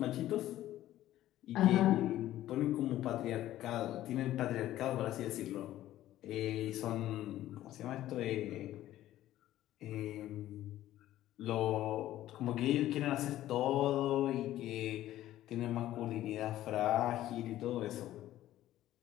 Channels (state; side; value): quieter; right; 13.8 dB